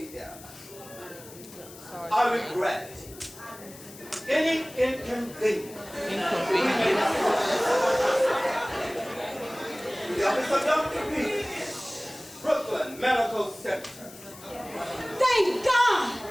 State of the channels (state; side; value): noise; left; hiss, 18 dB below the sound